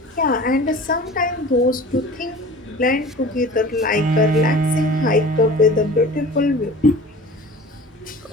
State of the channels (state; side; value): normal; both; correlation 0.41